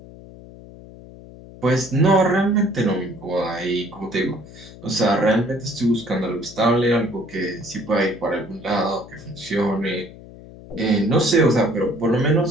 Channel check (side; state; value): left; noise; hum, 18 dB below the sound